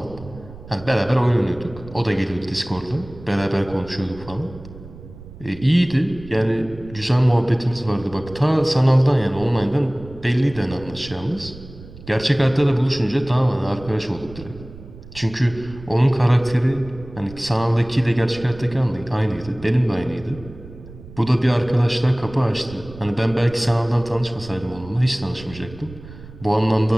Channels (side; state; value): right; noise; rumble, 17 dB below the sound